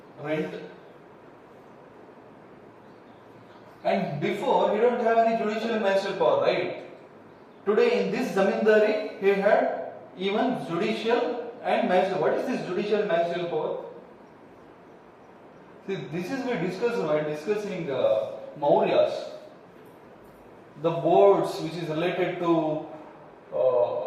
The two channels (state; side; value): identical; both; correlation 1.00